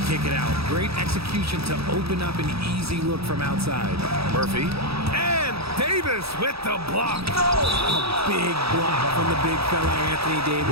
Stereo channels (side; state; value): left; late; 0.77 ms